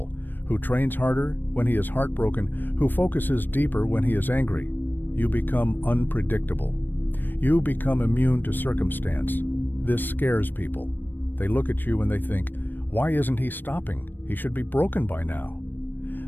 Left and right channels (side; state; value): right; late; 0.093 ms